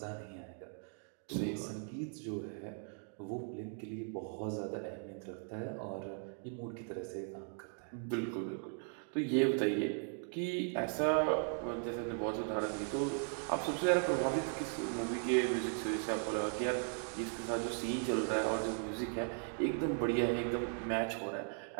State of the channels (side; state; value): left; silent; 52 dB below the other